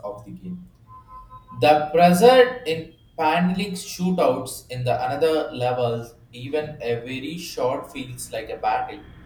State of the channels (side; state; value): both; identical; correlation 1.00